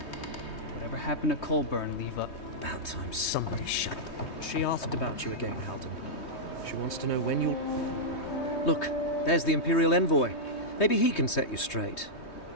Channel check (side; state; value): right; late; 3.2 ms